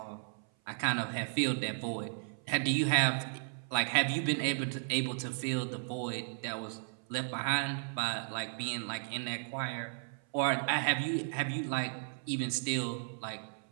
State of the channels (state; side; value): silent; left; 55 dB below the other